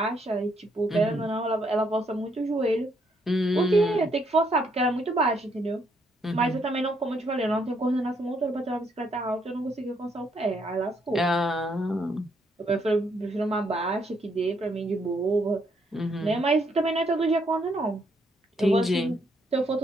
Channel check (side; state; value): both; normal; correlation 0.73